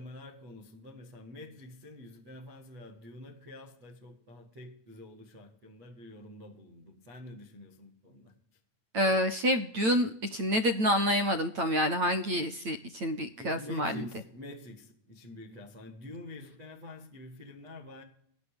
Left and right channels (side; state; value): left; late; 8.9 ms